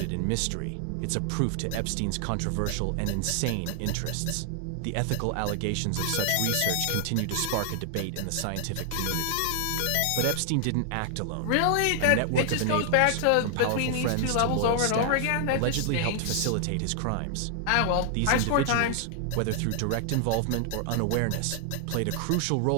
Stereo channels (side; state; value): both; different; correlation 0.00